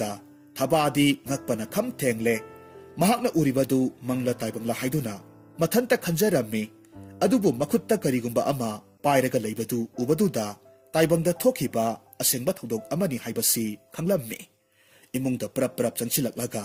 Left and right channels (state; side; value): identical; both; correlation 1.00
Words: thabadi ngakpana kham thengle mahakna uribadu mangla taibangla haiduna mathanta khanjarammi adubu makhutta karigumba ama pairaga leibadu ubaduda taibangda thokhiba asengba thodok amani haibasi khanglammi imungda prap prap changsilaklaga